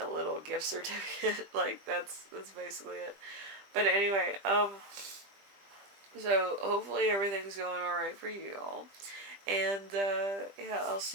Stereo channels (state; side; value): late; left; 20 ms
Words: little gift certificate. Like that's basically it. But anyway, so hopefully everything's going alright for you all. And yeah, I'll